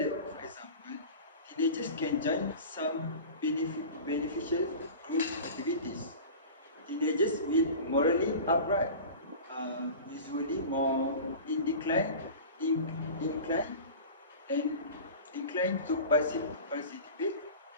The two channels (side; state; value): both; inverted; correlation -0.35